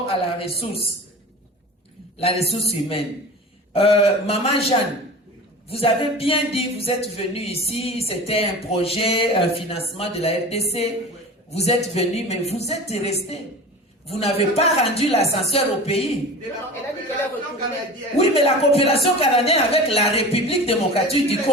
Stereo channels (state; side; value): normal; both; correlation 0.35